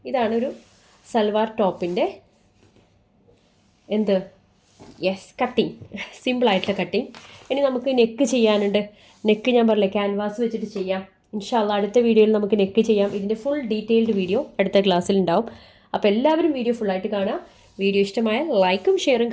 ഇതാണൊരു സൽവാർ ടോപ്പിൻ്റെ എന്ത് കട്ടിങ്, സിമ്പിളായിട്ടുള്ള കട്ടിങ്. ഇനി നമുക്ക് നെക്ക് ചെയ്യാനുണ്ട്. നെക്ക് ഞാൻ പറഞ്ഞില്ലേ ക്യാൻവാസ് വെച്ചിട്ട് ചെയ്യാം. ഇൻഷാ അള്ളാ അടുത്ത വീഡിയോയിൽ നമുക്ക് നെക്ക് ചെയ്യാം. ഇതിൻ്റെ ഫുൾ ഡീറ്റെയിൽഡ് വീഡിയോ അടുത്ത ക്ലാസ്സിൽ ഉണ്ടാവും. അപ്പോൾ എല്ലാവരും വീഡിയോ ഫുള്ളായിട്ട് കാണുക. വീഡിയോ ഇഷ്ടമായാൽ ലൈക്കും ഷെയറും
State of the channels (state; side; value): identical; both; correlation 1.00